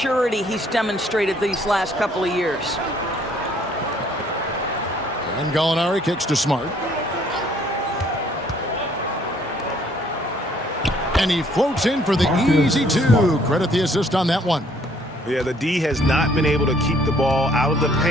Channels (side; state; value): both; normal; correlation 0.62